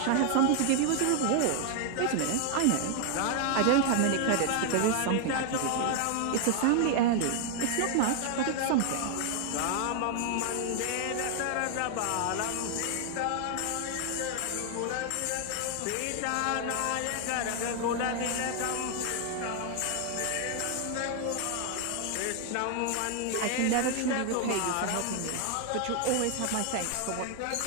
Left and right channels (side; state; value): both; different; correlation 0.00